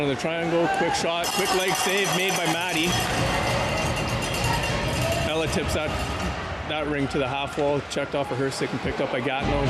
of the triangle, quick shot, quick leg save made by Maddie. Ella tips that ring to the half wall, checked off of her stick and picked up by Gatineau.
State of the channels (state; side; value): identical; both; correlation 1.00